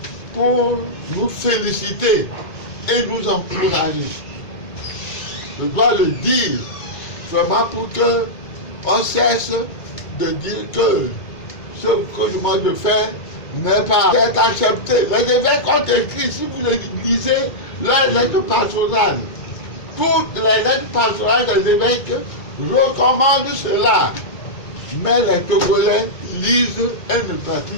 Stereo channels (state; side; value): late; right; 2.2 ms